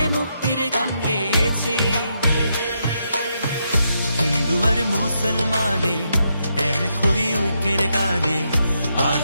মুক্তির গান গেয়েছি। হিন্দু আর মুসলমানে এক হই ঐক্যের গানে,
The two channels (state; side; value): inverted; both; correlation -0.81